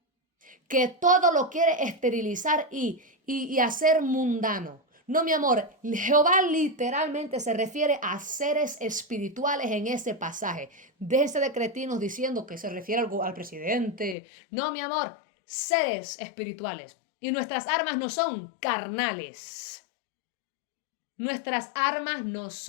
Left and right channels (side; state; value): right; drops out; at 14.2 s